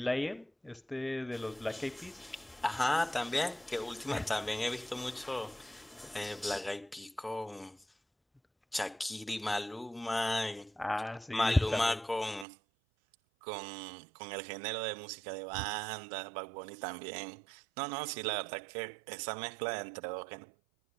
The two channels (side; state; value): left; drops out; at 12.5 s